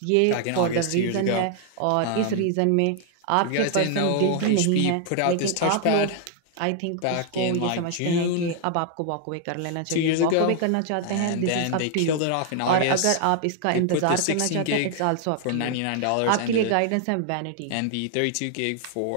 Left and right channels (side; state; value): both; different; correlation 0.00